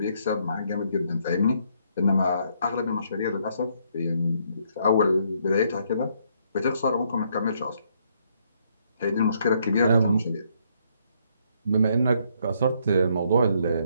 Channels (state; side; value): inverted; both; correlation -0.71